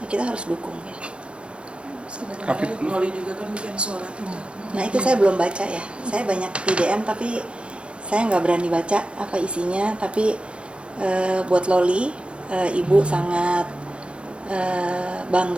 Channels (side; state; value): left; late; 0.059 ms